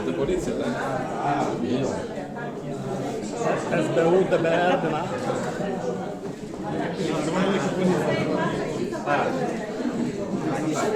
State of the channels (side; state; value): both; identical; correlation 1.00